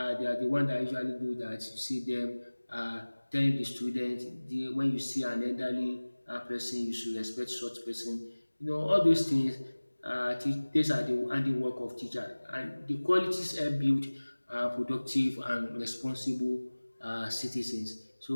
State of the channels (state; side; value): inverted; both; correlation -1.00